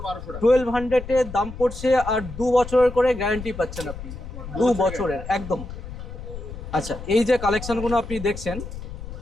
1200 টাকা। 1200 দাম পড়ছে, আর 2 বছরের করে গ্যারান্টি পাচ্ছেন আপনি, 2 বছরের একদম। আচ্ছা, এই যে কালেকশনগুলো আপনি দেখছেন,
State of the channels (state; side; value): noise; left; rumble, 10 dB below the sound